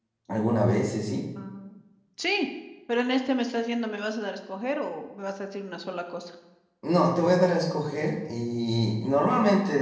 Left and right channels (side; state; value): both; identical; correlation 1.00